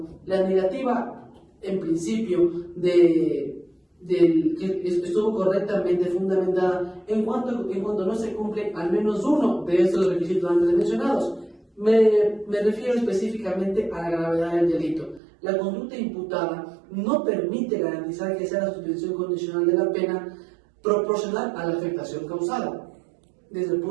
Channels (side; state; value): left; drops out; at 15.2 s